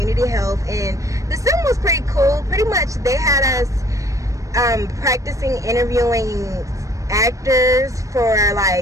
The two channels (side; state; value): left; late; 0.16 ms